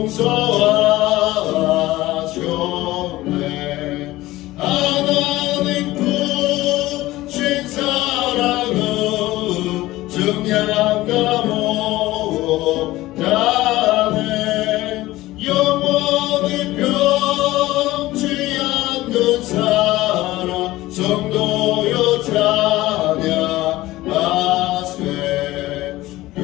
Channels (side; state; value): right; quieter; 17.5 dB